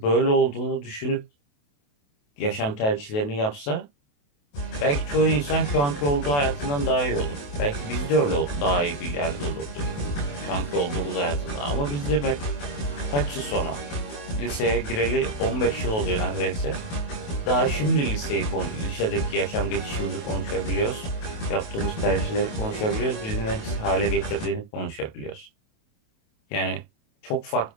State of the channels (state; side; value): late; right; 28 ms